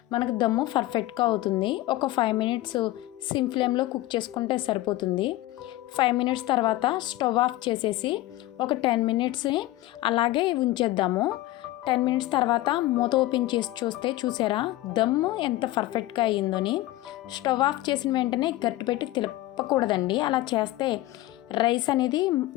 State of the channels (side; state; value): right; quieter; 16.8 dB